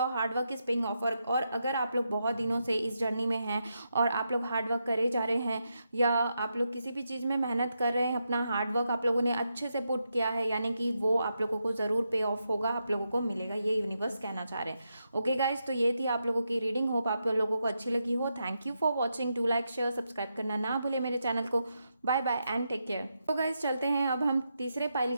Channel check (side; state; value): both; inverted; correlation -0.84